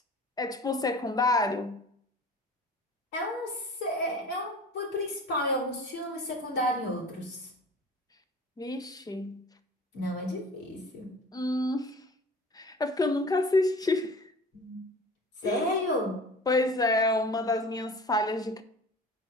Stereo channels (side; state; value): both; normal; correlation 0.41